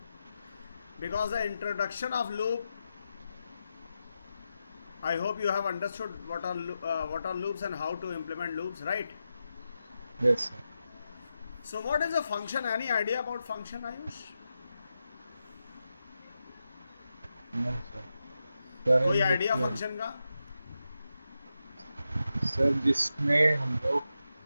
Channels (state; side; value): inverted; both; correlation -0.89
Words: because the introduction of loop. I hope you have understood what are loops and how to implement loops, right? Yes, sir. So what is a function? Any idea about function, Ayush? No, sir. Sir कोई इन idea which function का? Sir जिसमें हम लोग